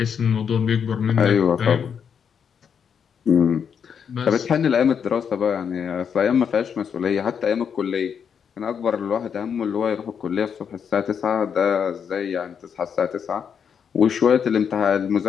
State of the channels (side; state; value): right; quieter; 7.3 dB